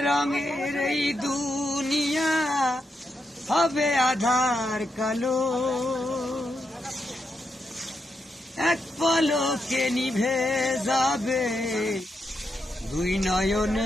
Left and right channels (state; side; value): normal; both; correlation 0.83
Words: এই দুনিয়া হবে আধার কালো। এক পলকে নিভে যাবে দুই